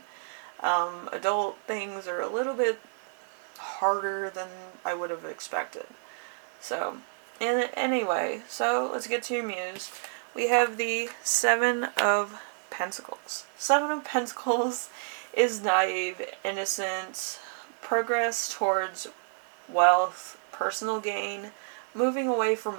Adult things are a little bit harder than I would have expected. So, and anyway, so let's get to your muse. We have the Seven of Pentacles. Seven of Pentacles is naive, innocent, progress towards wealth, personal gain, moving away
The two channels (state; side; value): silent; left; digital silence